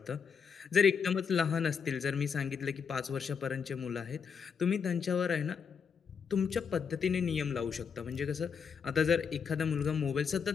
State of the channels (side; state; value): right; quieter; 6.5 dB